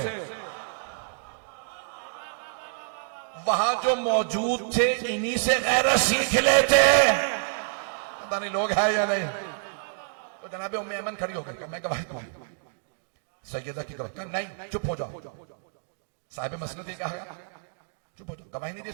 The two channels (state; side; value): silent; left; digital silence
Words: वहां जो मौजूद थे इन्हीं से गैरत सीख लेते। पता नहीं लोग हैं या नहीं। तो जनाबे उम्मे ऐमन खड़ी हो गई, मैं गवाही दूंगी। सैयदा की गवाही, नहीं चुप हो जाओ। साहिब मसनद ने कहा चुप हो जाओ, गवाही नहीं दे